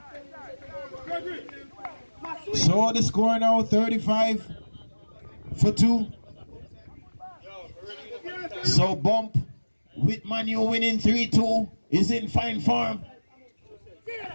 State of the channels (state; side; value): inverted; both; correlation -1.00